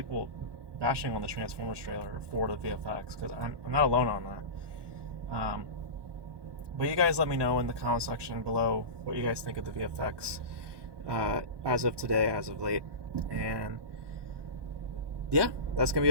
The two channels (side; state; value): left; late; 1.2 ms